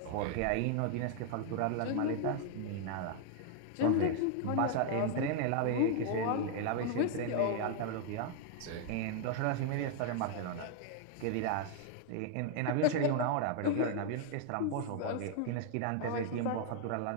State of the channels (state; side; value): different; both; correlation 0.00